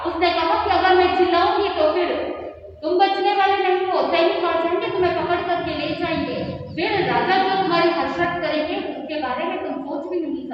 उसने कहा कि अगर मैं चिल्लाऊंगी तो फिर तुम बचने वाले नहीं हो, सैनिक आ जाएंगे, तुम्हें पकड़ करके ले जाएंगे, फिर राजा जो तुम्हारी हसरत करेंगे उसके बारे में तुम सोच भी नहीं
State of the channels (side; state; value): both; identical; correlation 1.00